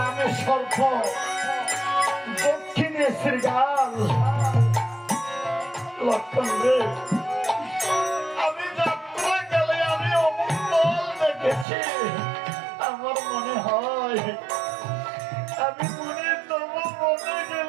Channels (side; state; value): left; drops out; at 11.7 s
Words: সর্প, দক্ষিণে শ্রীগাল। লক্ষণ রে, আমি যাত্রাকালে আমি অমঙ্গল দেখেছি। আমার মনে হয় আমি মনে তবু মনে